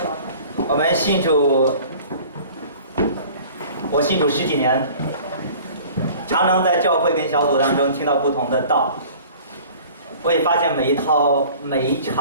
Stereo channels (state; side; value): inverted; both; correlation -0.46